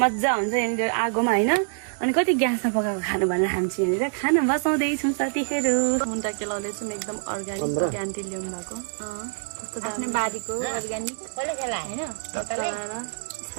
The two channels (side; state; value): left; silent; digital silence